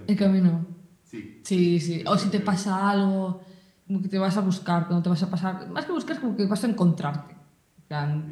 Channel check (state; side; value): identical; both; correlation 1.00